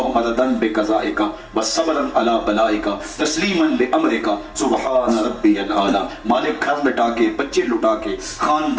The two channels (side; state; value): both; identical; correlation 1.00